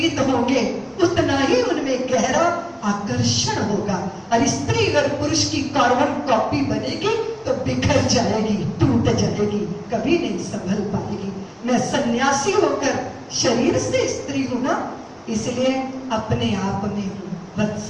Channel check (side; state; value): both; identical; correlation 1.00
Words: होंगे उतना ही उनमें गहरा आकर्षण होगा। और स्त्री अगर पुरुष की कार्बन कॉपी बनेगी तो बिखर जाएगी, टूट जाएगी, कभी नहीं संभल पाएगी। मैं सन्यासी होकर शरीर से स्त्री हूं ना, इसलिए अपने आप में हूँ,